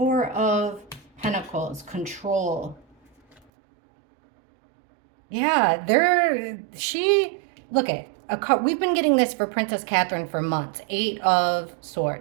of Pentacles, control. Yeah, look at we've been getting this for Princess Catherine for months. Eight of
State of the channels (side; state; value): left; drops out; at 3.4 s